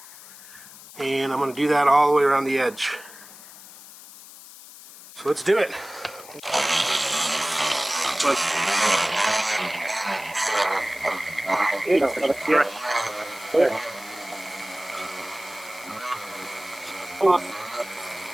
And I'm going to do that all the way around the edge. So let's do it.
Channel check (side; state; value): left; noise; hiss, 18 dB below the sound